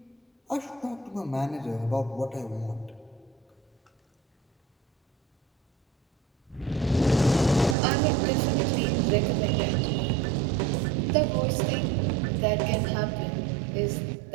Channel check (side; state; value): left; drops out; at 7.8 s